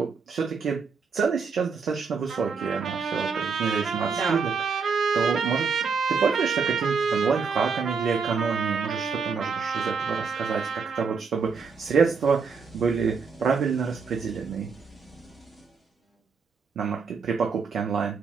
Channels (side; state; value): left; quieter; 5.4 dB